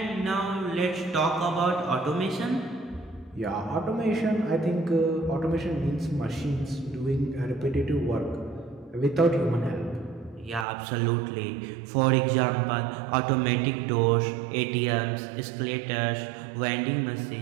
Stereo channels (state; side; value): drops out; left; at 10.7 s